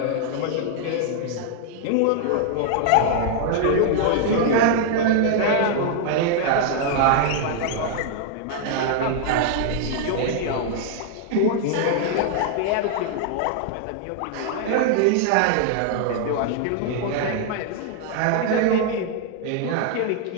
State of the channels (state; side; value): different; both; correlation 0.00